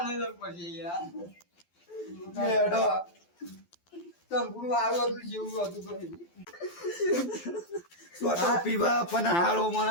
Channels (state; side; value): late; right; 12 ms